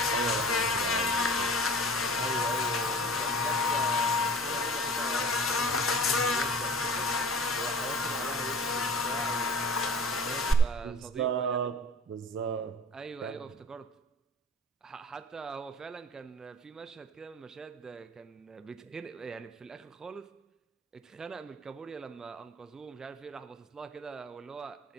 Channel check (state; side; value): normal; both; correlation 0.41